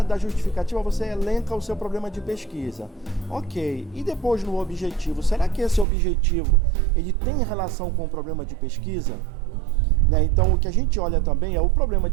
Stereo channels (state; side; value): drops out; left; at 5.9 s